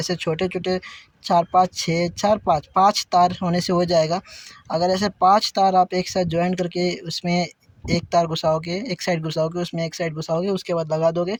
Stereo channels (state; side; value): identical; both; correlation 1.00